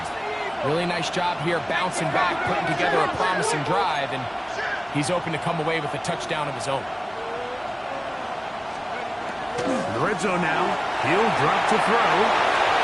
Really nice job here bouncing back, putting together a promising drive, and he's open to come away with a touchdown of his own. In the red zone now. He'll drop to throw.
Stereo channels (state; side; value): identical; both; correlation 1.00